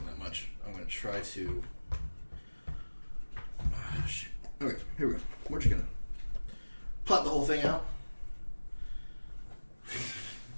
that much. I'm gonna try to. Shit. Okay, here we go. We're just gonna plot the whole thing out.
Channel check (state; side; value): inverted; both; correlation -1.00